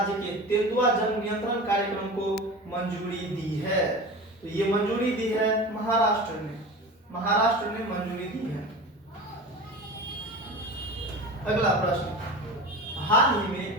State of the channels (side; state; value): both; normal; correlation 0.32